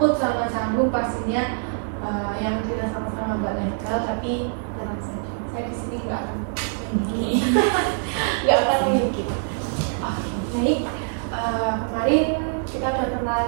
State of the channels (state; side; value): silent; left; digital silence